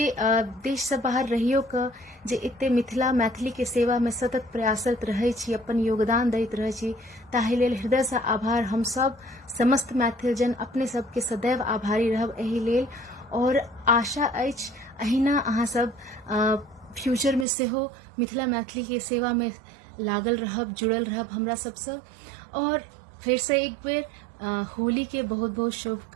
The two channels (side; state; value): left; drops out; at 17.4 s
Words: देश से बाहर रहियो क जे एते मिथिला मैथिली के सेवा में सतत प्रयासरत रहे छी, अपन योगदान दैत रहे छी, ताहि लेल हृदय से आभार। हम सब समस्त मैथिलजन अपने सबके सदैव आभारी रहब एहि लेल, और आशा अछि अहिना अहाँ सब फ्यूचर में सेहो मिथिला मैथिली के सेवा में लागल रहब, जुड़ल रहब हमरा सबसे। और फिर से एक बेर होली के बहुत बहुत